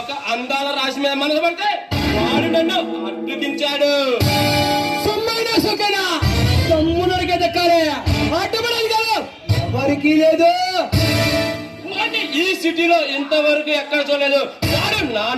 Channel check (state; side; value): identical; both; correlation 1.00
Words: అందాల రాశి మీద మనసు పడితే వాడు నన్ను అడ్డుకించాడు. సొమ్మైనా సొక్కైనా తమ్ముడికే దక్కాలి, అడ్డుపడాలి కాదు ఎవరికి లేదు. వాడిని ఈ సిటీలో ఇంతవరకు ఎక్కడ చూడలేదు. వాడు నా